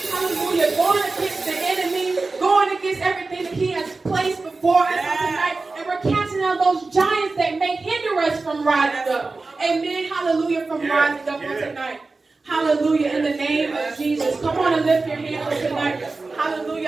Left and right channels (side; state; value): left; quieter; 3.7 dB